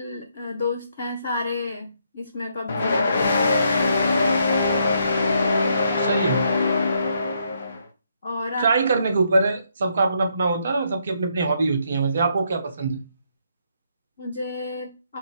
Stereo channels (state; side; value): inverted; both; correlation -0.75